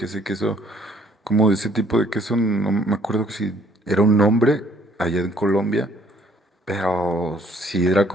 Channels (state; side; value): normal; both; correlation 0.61